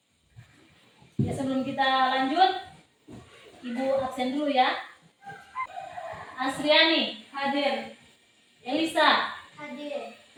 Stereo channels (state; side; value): identical; both; correlation 1.00